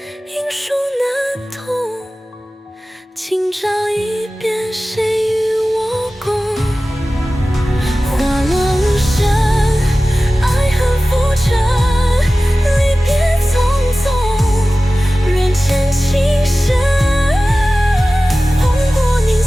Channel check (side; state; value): both; normal; correlation 0.96